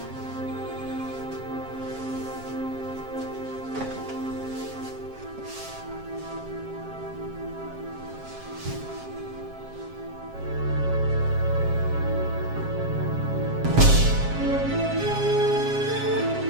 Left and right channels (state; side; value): late; left; 7.4 ms